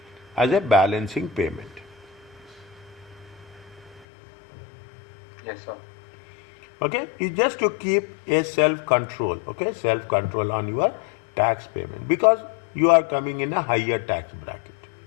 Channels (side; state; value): right; drops out; at 4.0 s